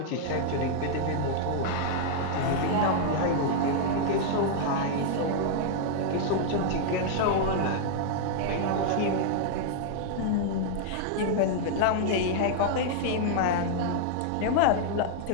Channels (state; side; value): different; both; correlation -0.01